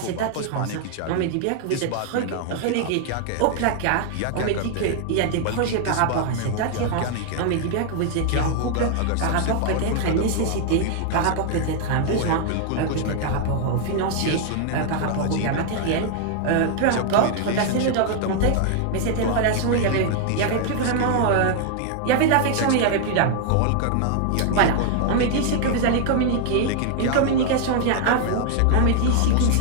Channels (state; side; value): different; both; correlation 0.00